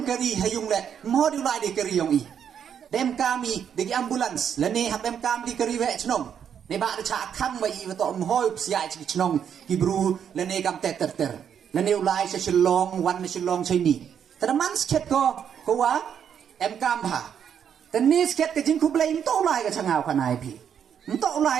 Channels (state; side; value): quieter; left; 8.3 dB